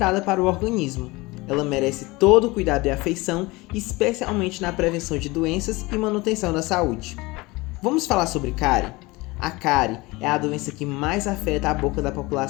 para o organismo. Ela merece todo o cuidado e afeição, especialmente na prevenção de doenças e manutenção da saúde. Vamos falar sobre cárie? A cárie é a doença que mais afeta a boca da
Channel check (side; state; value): right; quieter; 22.5 dB